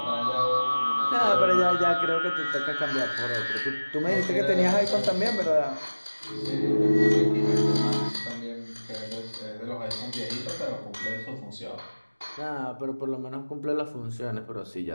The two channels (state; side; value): inverted; both; correlation -1.00